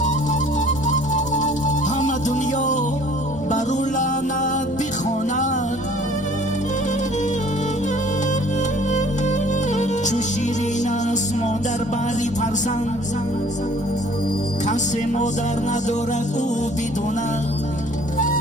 همه دنیا بر او لعنت بخواند. چو شیرین است مادر بری فرزند، کس مادر ندارد او بداند.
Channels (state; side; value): normal; both; correlation 0.54